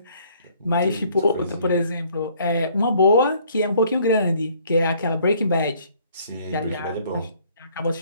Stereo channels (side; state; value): both; inverted; correlation -0.61